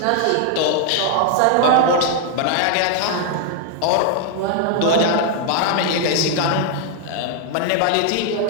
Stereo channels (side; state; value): both; different; correlation 0.00